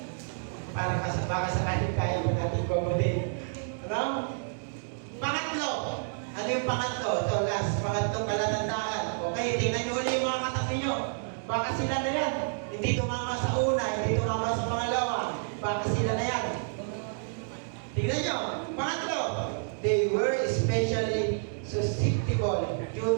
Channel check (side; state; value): left; silent; 58 dB below the other